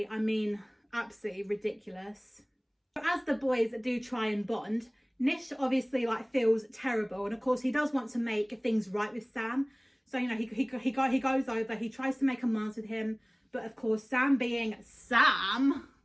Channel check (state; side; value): identical; both; correlation 1.00